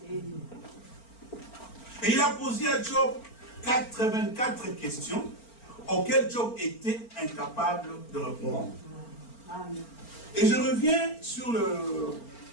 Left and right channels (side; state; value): right; late; 4.4 ms